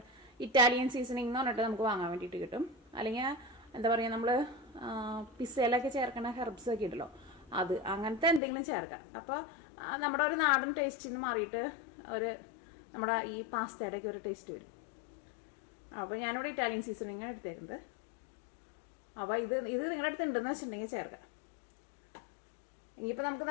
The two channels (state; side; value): drops out; right; at 8.4 s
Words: ഇറ്റാലിയൻ സീസണിങ് എന്ന് പറഞ്ഞിട്ട് നമുക്ക് വാങ്ങാൻ വേണ്ടിയിട്ട് കിട്ടും. അല്ലെങ്കിൽ എന്താ പറയുക, നമ്മൾ പിസ്സയിലൊക്കെ ചേർക്കുന്ന ഹെർബ്സ് ഒക്കെ ഉണ്ടല്ലോ, അത് അങ്ങനത്തെ എന്തെങ്കിലും ചേർക്കാം. അപ്പോൾ നമ്മുടെ ഒരു നാടൻ ടേസ്റ്റിൽ നിന്ന് മാറിയിട്ട് നമ്മുടെ ഈ പാസ്തയുടെയൊക്കെ ഒരു ടേസ്റ്റ് വരും. അപ്പോൾ ഞാനിവിടെ ഇറ്റാലിയൻ സീസണിങ്ങാണ് എടുത്തേക്കുന്നത്. അപ്പോൾ ഇത് നിങ്ങളുടെ അടുത്ത് ഉണ്ടെന്ന് വെച്ചിട്ടുണ്ടെങ്കിൽ ചേർക്കാം. ഇനിയിപ്പോൾ നമുക്ക്